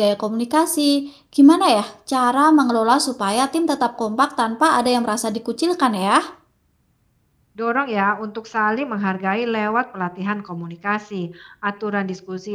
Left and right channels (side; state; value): both; identical; correlation 1.00